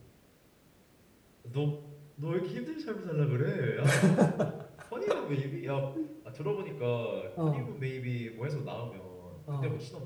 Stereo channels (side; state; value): both; identical; correlation 1.00